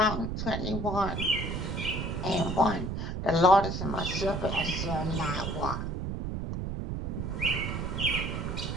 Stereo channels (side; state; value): right; noise; rumble, 3 dB below the sound